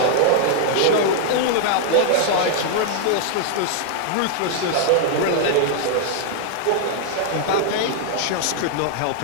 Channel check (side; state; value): both; different; correlation -0.01